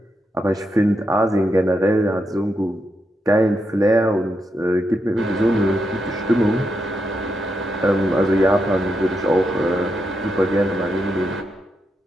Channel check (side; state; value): both; normal; correlation 0.83